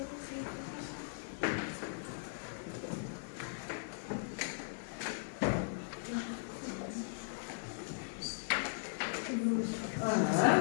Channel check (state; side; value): silent; right; digital silence